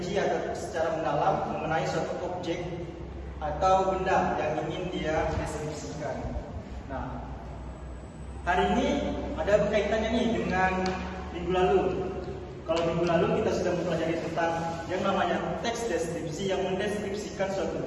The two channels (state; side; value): identical; both; correlation 1.00